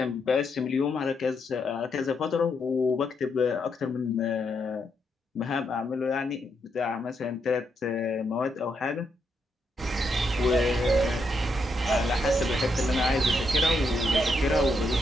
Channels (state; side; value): normal; both; correlation 0.79